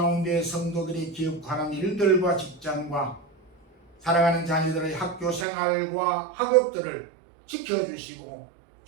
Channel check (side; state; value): left; drops out; at 5.5 s